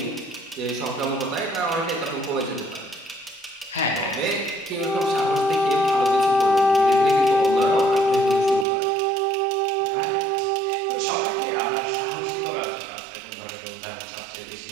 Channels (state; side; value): drops out; left; at 8.7 s